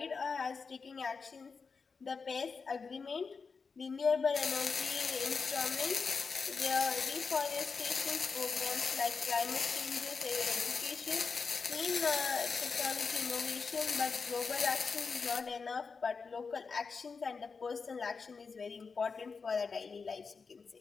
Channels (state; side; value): quieter; right; 5.0 dB